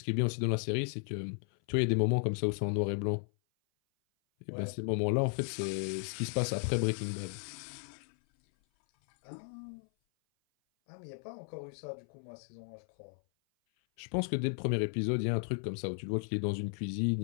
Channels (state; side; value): silent; right; 55 dB below the other